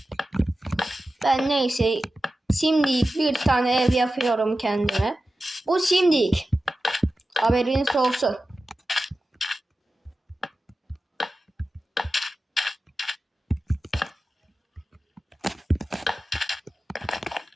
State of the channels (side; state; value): both; normal; correlation 0.94